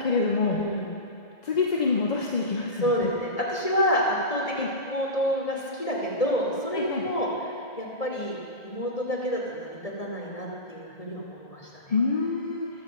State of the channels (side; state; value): right; late; 1.7 ms